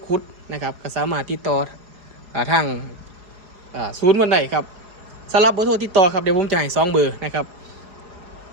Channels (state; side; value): late; left; 4.8 ms